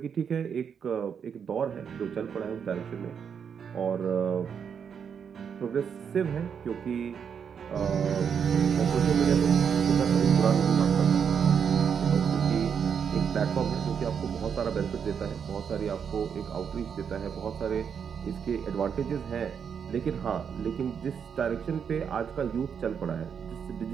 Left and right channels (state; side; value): quieter; left; 7.2 dB